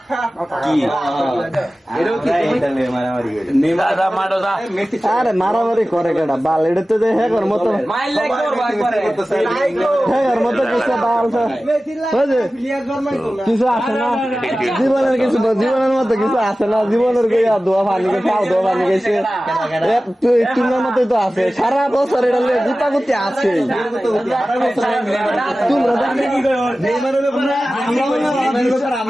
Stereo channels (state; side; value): normal; both; correlation 0.96